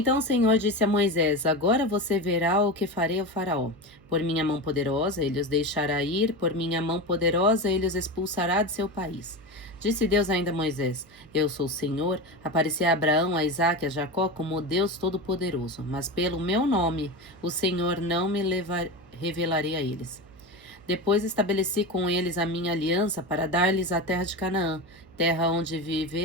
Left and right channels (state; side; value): noise; right; hum, 25 dB below the sound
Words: o Senhor disse a Moisés: Agora você verá o que farei ao faraó. Por minha mão poderosa ele os deixará ir, por minha mão poderosa ele os expulsará de seu país. Disse Deus ainda a Moisés: Eu sou o Senhor, apareci a Abraão, a Isaque e a Jacó como Deus Todo-Poderoso, mas pelo meu nome o Senhor não me revelarei a eles. Depois estabeleci com eles a minha aliança para dar-lhes a terra de Canaã, terra onde